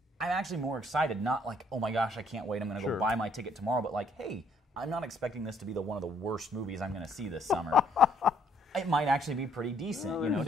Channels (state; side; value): normal; both; correlation 0.66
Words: I'm actually more excited. Not like, oh my gosh, I can't wait, I'm going to go buy my ticket tomorrow, but like, hey, I'm not expecting this to be one of the worst movies I'm going to see this summer. It might actually be pretty decent,